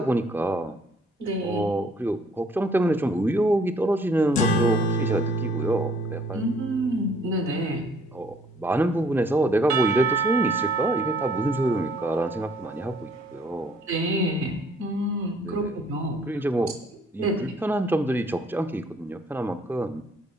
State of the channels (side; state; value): both; normal; correlation 0.61